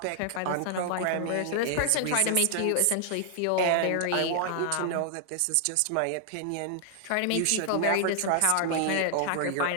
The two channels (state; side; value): different; both; correlation 0.00